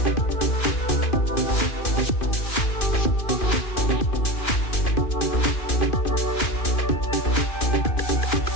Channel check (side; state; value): right; late; 2.5 ms